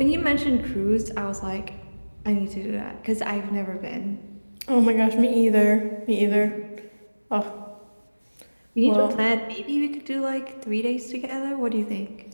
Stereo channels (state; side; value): inverted; both; correlation -1.00